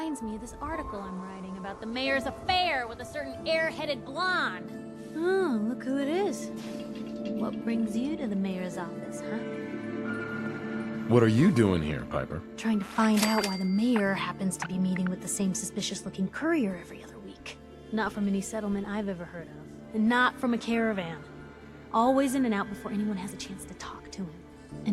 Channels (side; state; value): both; identical; correlation 1.00